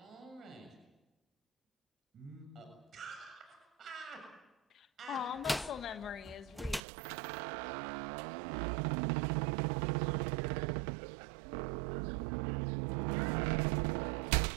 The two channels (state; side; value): drops out; left; at 6.8 s